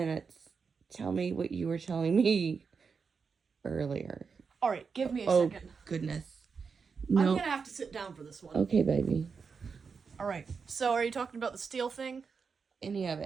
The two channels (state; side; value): quieter; left; 5.5 dB